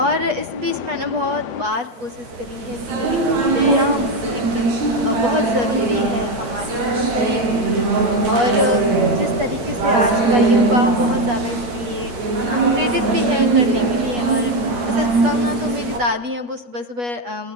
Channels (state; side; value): late; left; 9.0 ms